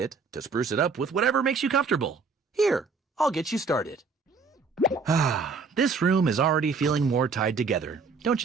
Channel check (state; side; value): quieter; left; 4.6 dB